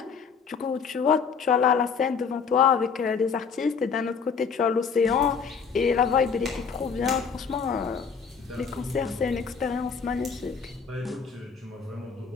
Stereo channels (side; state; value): right; quieter; 5.9 dB